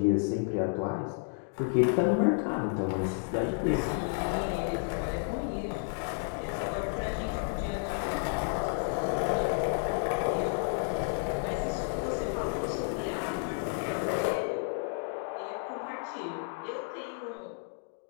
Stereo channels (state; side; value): silent; right; 57 dB below the other